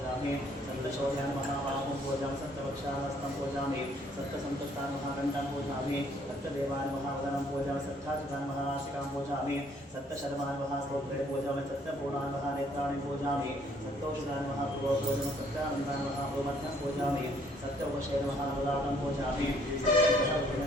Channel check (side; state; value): both; normal; correlation 0.63